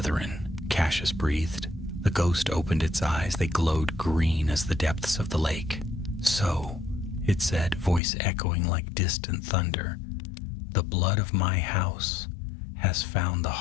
Cassius breathed. The ghost opened its eyes. They glowed green as the depths of the lake. "So," it said, voice echoing like distant thunder, "the blood of my house has found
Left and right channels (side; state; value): right; drops out; at 8.0 s